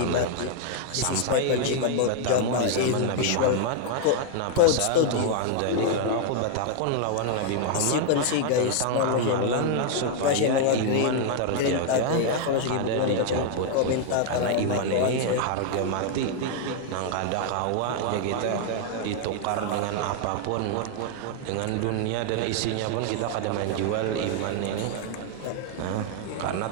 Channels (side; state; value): both; different; correlation 0.00